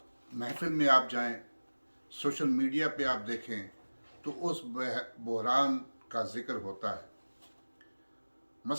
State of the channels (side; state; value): both; inverted; correlation -1.00